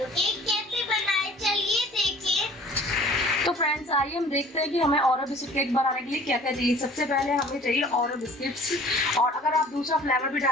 केक कैसे बनाए चलिए देखिए। तो फ्रेंड्स आइए हम देखते हैं कि हमें ओरियो बिस्किट केक बनाने के लिए क्या क्या चाहिए। सबसे पहले हमें चाहिए ओरियो बिस्किट्स, और अगर आप दूसरा फ्लेवर भी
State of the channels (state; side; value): normal; both; correlation 0.50